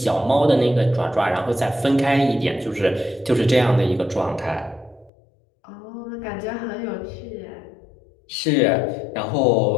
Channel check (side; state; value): right; drops out; at 5.1 s